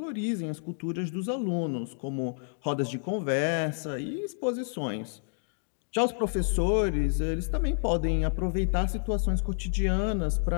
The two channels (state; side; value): silent; right; digital silence